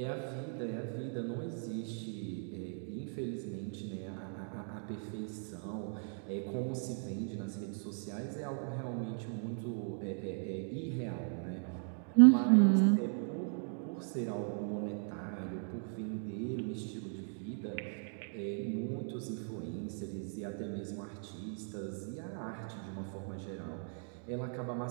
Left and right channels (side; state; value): left; silent; 53 dB below the other